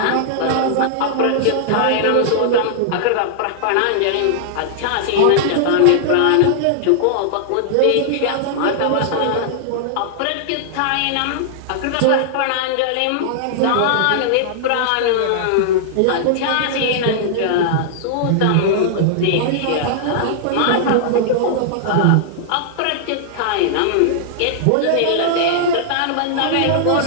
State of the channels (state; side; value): different; both; correlation -0.01